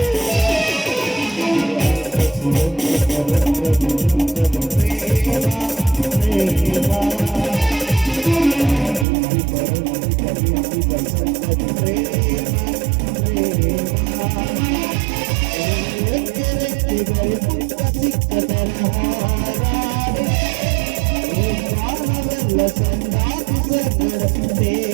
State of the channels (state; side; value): drops out; left; at 9.1 s